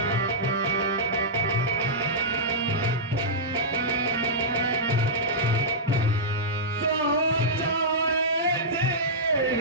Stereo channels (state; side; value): normal; both; correlation -0.13